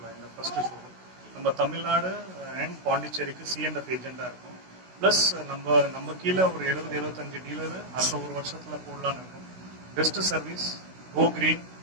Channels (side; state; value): left; late; 16 ms